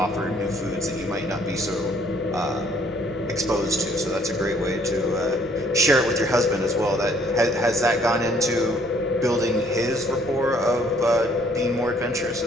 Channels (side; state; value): left; noise; rumble, 23 dB below the sound